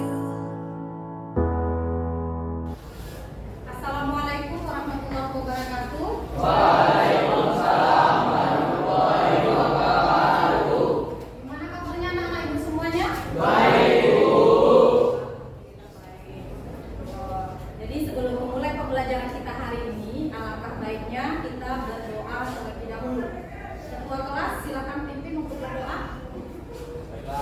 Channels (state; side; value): identical; both; correlation 1.00